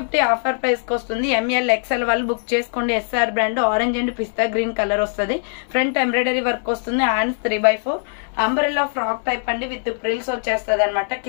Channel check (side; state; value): right; silent; digital silence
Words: ఆఫర్ ప్రైస్ కి వస్తుంది. ఎంఎల్ ఎక్సెల్ వాళ్ళు బుక్ చేసుకోండి. SR brand. Orange and pista green colour వస్తుంది. ఫ్రంట్ ఎంబ్రాయిడరీ వర్క్ వస్తుంది. హ్యాండ్స్ 3/4 అంబ్రెల్లా ఫ్రాక్ టైప్ అండి. With frills వచ్చేస్తుంది అనమాట.